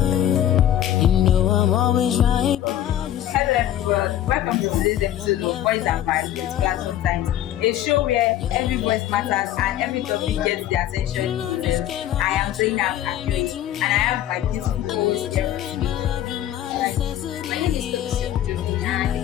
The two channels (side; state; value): right; quieter; 12.0 dB